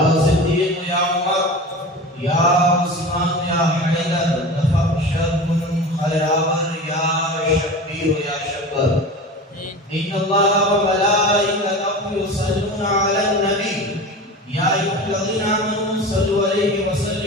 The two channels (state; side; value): normal; both; correlation 0.32